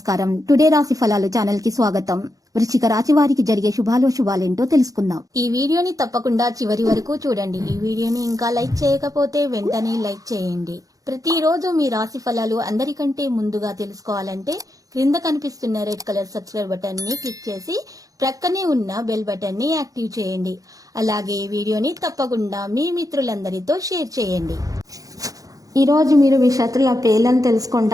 టుడే రాశి ఫలాలు ఛానల్ కి స్వాగతం. వృశ్చిక రాశి వారికి జరిగే శుభాలేంటో తెలుసుకుందాం. ఈ వీడియోని తప్పకుండా చివరి వరకు చూడండి. ఈ వీడియోని ఇంకా లైక్ చేయకపోతే వెంటనే లైక్ చేయండి. ప్రతిరోజు మీ రాశి ఫలాలు అందరికంటే ముందుగా తెలుసుకోవాలంటే క్రింద కనిపిస్తున్న రెడ్ కలర్ సబ్స్క్రైబ్ బటన్ ని క్లిక్ చేసి ప్రక్కనే ఉన్న బెల్ బటన్ ని యాక్టివ్ చేయండి. అలాగే ఈ వీడియోని తప్పకుండా మీ మిత్రులందరితో షేర్ చేయండి. ఈ రోజు మీరు మీ శత్రుల పేర్లను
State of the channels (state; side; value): late; left; 0.17 ms